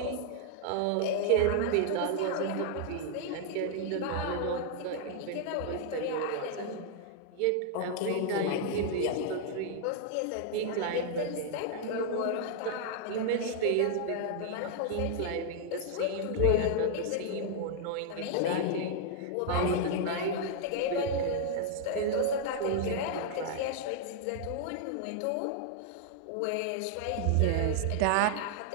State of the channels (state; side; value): different; both; correlation 0.00